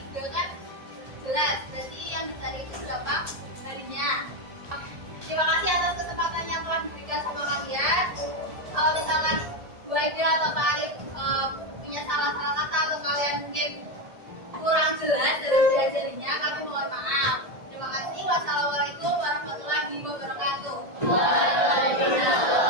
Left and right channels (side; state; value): left; late; 1.8 ms